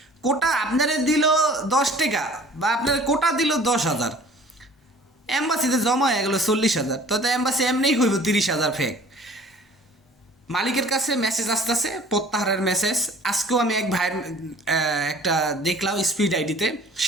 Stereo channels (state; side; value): normal; both; correlation 0.50